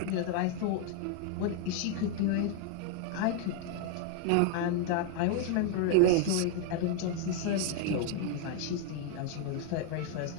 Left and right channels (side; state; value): both; different; correlation 0.00